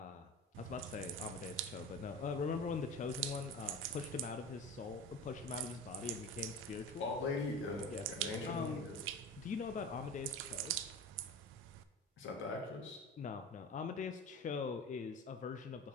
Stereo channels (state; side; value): normal; both; correlation 0.32